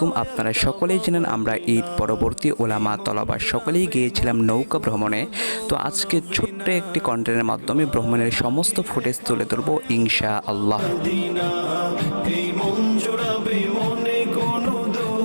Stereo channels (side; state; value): both; inverted; correlation -1.00